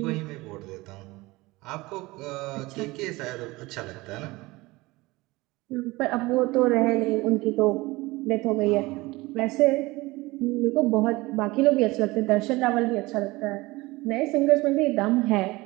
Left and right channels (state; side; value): quieter; left; 21.3 dB